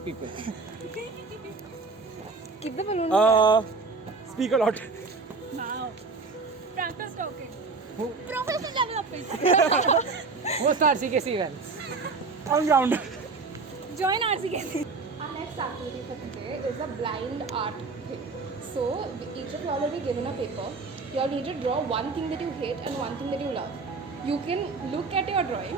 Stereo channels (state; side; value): quieter; left; 4.2 dB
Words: people. Keep the balloon in the air. Speak a lot. Now, practice talking. Professional development. Host RCKC events. On ground. Join RCKC. Our next activity for today is a blind art thing. So each of you all will be given a paper. You all need to draw one thing that you hate and one thing that you love. You can look at your drawing.